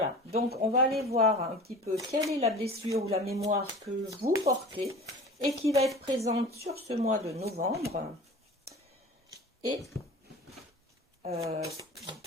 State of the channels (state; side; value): normal; both; correlation 0.39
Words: donc on va aller voir un petit peu quelle est la blessure ou la mémoire que vous portez et qui va être présente sur ce mois de novembre. Et à